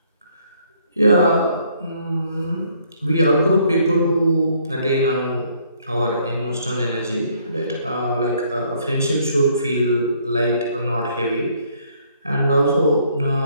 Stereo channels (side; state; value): both; inverted; correlation -0.65